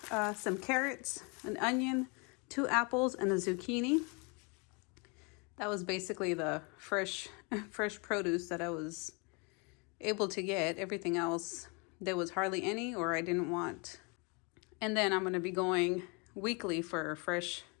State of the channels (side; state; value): right; quieter; 31.9 dB